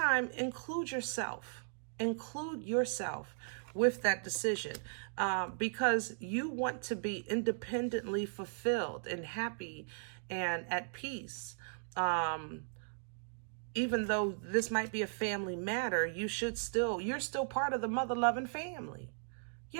include yourself. Include yourself with that decision because you want to be independently fulfilled and happy and at peace. Even though this might be a family matter, you're still part of the mother-loving family. You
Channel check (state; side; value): silent; left; digital silence